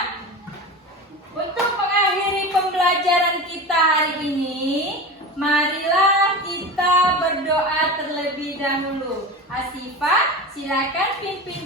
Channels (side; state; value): both; normal; correlation 0.28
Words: untuk mengakhiri pembelajaran kita hari ini, marilah kita berdoa terlebih dahulu. Asifah, silakan pimpin